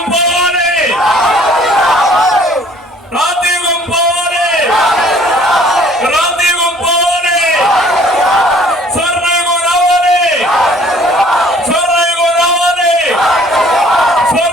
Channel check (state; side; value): normal; both; correlation 0.55